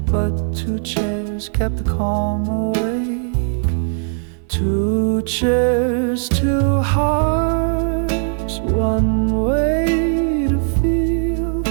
but 2 chairs kept the calm awake. 2 chairs, 2 hearts, one way to feel,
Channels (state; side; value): silent; left; digital silence